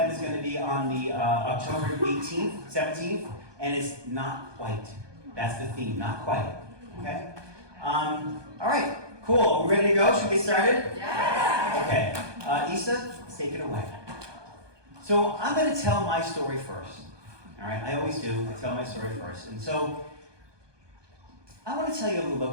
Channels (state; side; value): late; left; 1.2 ms